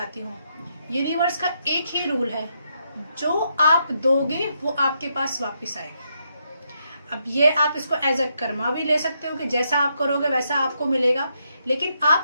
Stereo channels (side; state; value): both; inverted; correlation -0.79